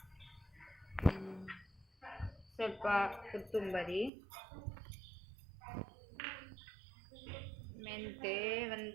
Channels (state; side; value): drops out; left; at 4.1 s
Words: ಸ್ವಲ್ಪ ಕೊತ್ತಂಬರಿ, ಮೆಂತೆ